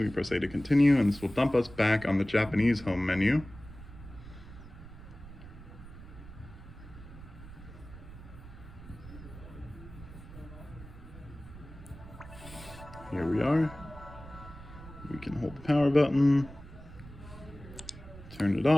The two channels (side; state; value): right; noise; rumble, 16 dB below the sound